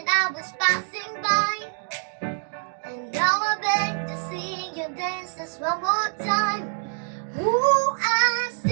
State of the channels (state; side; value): silent; left; 61 dB below the other